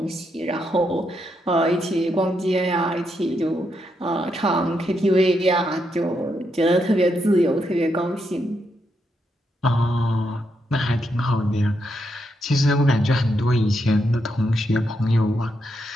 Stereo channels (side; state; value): both; normal; correlation 0.81